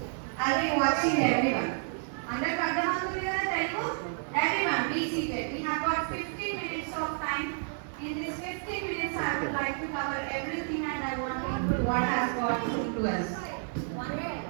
I'll be watching everyone. అందరికి అర్థమవుతుంది కదా Telugu? Everyone be seated. We have got 15 minutes of time. In this 15 minutes I would like to cover everything and I want to include what has got to us.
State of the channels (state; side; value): silent; left; 58 dB below the other